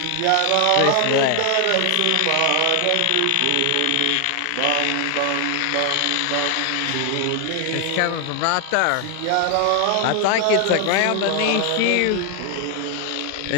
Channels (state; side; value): different; both; correlation 0.00